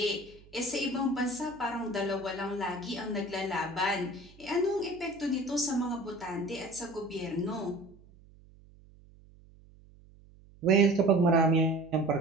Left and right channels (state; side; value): noise; right; hum, 25 dB below the sound